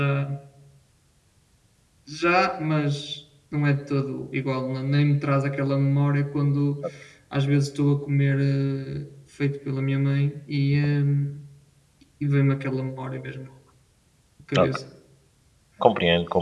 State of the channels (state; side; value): identical; both; correlation 1.00